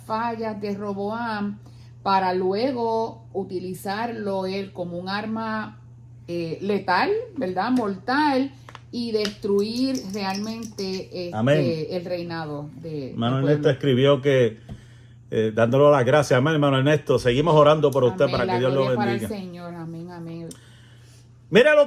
fallas de Roboam para luego utilizarlo él como un arma letal, ¿verdad? Mortal, y destruir realmente el reinado de hermano Ernesto escribió que dándole las gracias, amén, hermano Ernesto, seguimos orando por usted, amén, para que Dios lo bendiga. Para el Señor, amén, amén. Mira lo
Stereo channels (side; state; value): both; identical; correlation 1.00